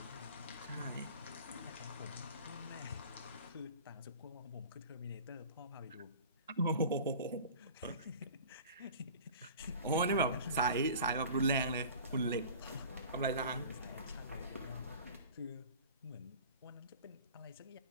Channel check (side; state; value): both; inverted; correlation -0.42